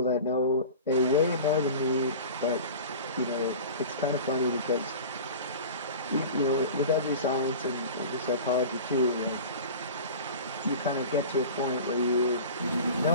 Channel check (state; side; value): inverted; both; correlation -0.36